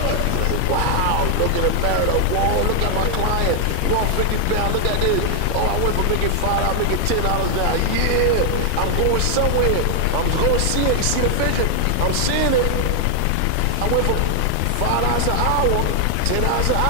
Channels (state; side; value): different; both; correlation 0.00